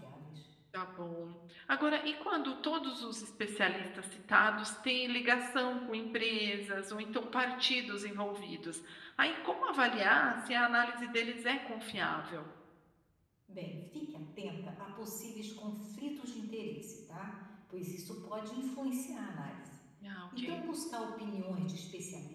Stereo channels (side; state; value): both; identical; correlation 1.00